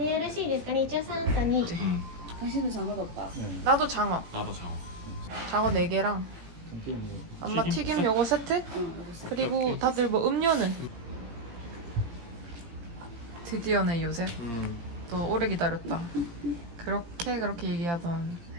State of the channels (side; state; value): left; late; 17 ms